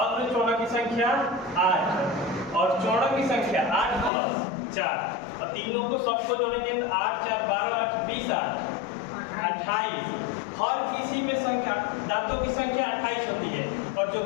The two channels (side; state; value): right; drops out; at 4.1 s